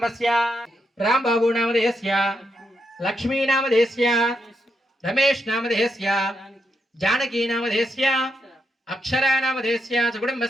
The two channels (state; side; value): normal; both; correlation 0.82